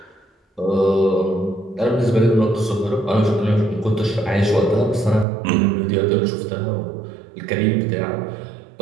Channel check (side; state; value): left; drops out; at 5.2 s